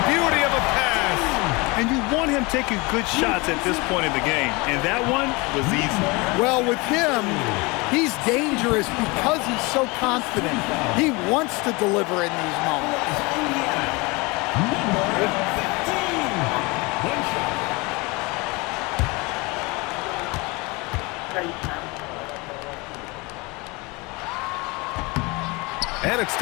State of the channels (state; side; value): quieter; right; 25.8 dB